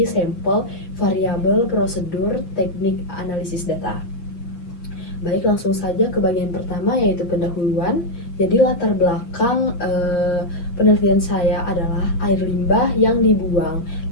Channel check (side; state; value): right; late; 7.8 ms